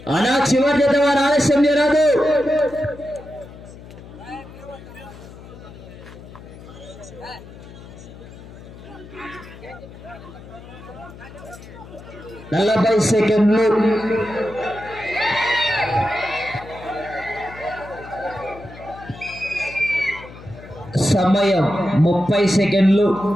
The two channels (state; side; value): noise; left; hum, 17 dB below the sound